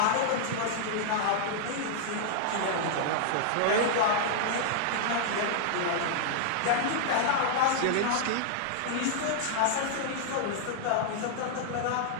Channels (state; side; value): different; both; correlation -0.01